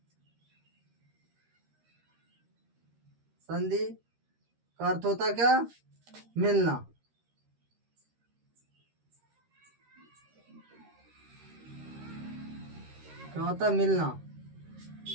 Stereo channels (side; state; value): left; late; 13 ms